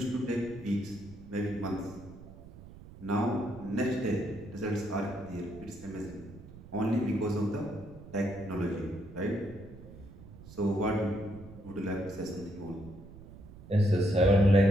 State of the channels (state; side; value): noise; right; rumble, 17 dB below the sound